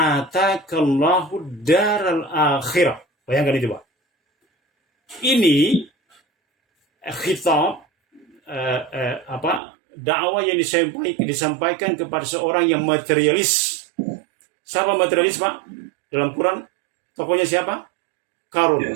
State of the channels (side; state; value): left; drops out; at 9.6 s